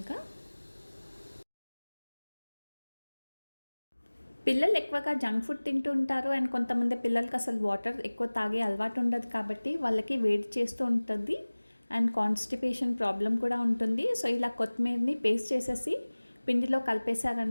పిల్లలు ఎక్కువగా జంక్ ఫుడ్ తింటూ ఉంటారు అండ్ కొంతమంది పిల్లలకి అసలు వాటర్ ఎక్కువ తాగే అలవాటు ఉండదు కాబట్టి వాళ్ళకి వేడి చేస్తూ ఉంటుంది అండ్ కాన్స్టిపేషన్ ప్రాబ్లం కూడా ఉంటుంది. సో ఇలా కొత్తిమీరని పేస్ట్ చేసేసి పిండిలో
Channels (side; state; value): both; inverted; correlation -1.00